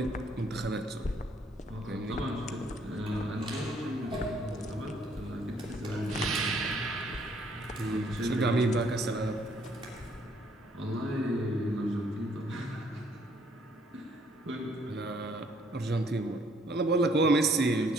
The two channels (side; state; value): both; normal; correlation 0.65